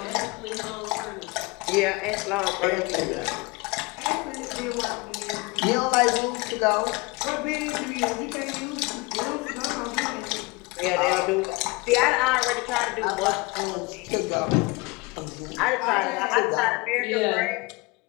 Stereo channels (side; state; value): right; quieter; 26.0 dB